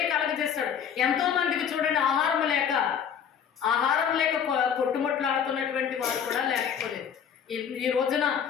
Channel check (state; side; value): quieter; right; 7.9 dB